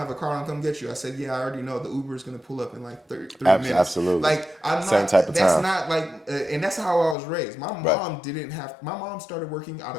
a car, I'll come get you. I said, yeah, I already know the Uber is going to pull up in like 3 minutes. Absolutely. Like, I'm not, same type of that's time. not like, and that's how I was raised. My mom started working out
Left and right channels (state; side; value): drops out; right; at 7.2 s